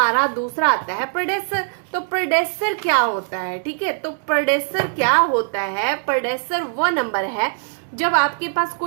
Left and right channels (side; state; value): left; silent; digital silence